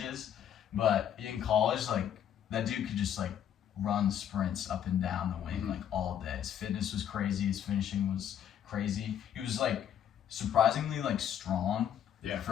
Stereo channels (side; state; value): right; quieter; 9.6 dB